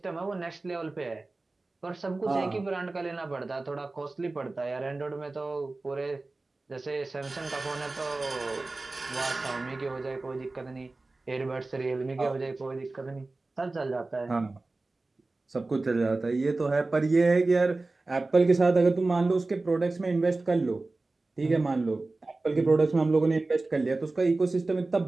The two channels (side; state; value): left; quieter; 3.3 dB